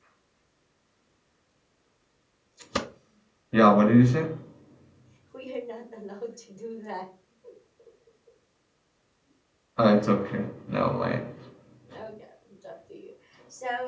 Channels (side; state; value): both; identical; correlation 1.00